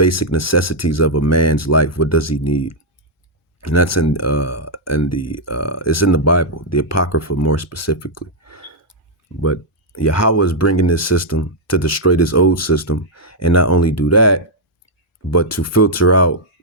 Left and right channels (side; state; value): both; normal; correlation -0.04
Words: necessities of a man's life? What does he need? And that's it's in the Bible, the Apocrypha more specifically. But Yahweh is bringing this system to destroy this old system, and not only do that, but to filter out